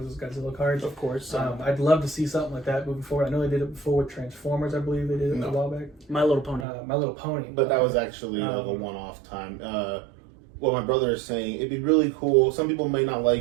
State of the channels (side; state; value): left; drops out; at 6.7 s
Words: those Godzilla cards. Of course. I'd love to see something like that moving forward. I know they did it before with Transformers. I believe they did it a while back. My Little Pony. My Little Pony. But that was actually like a one-off time. What my brother is saying, it'd be really cool. Some people may not